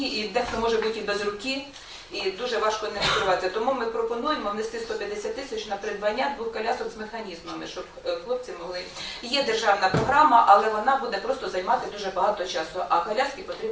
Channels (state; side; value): identical; both; correlation 1.00